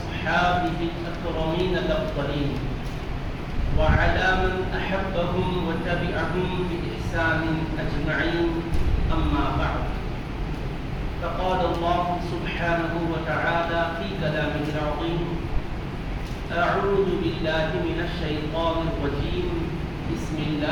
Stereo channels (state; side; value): identical; both; correlation 1.00